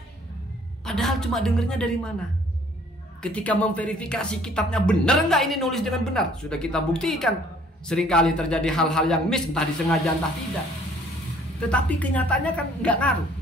Padahal cuma dengernya dari mana? Ketika memverifikasi kitabnya benar nggak ini nulis dengan benar, sudah kita buktikan. Seringkali terjadi hal-hal yang miss, entah disengaja entah tidak. Tetapi kenyataannya kan nggak ngaruh.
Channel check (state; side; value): normal; both; correlation 0.58